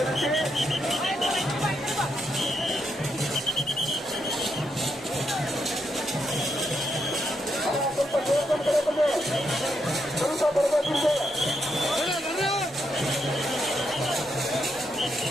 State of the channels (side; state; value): both; normal; correlation 0.80